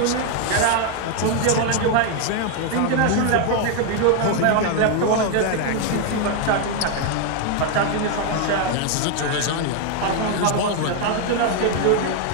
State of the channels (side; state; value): both; different; correlation 0.01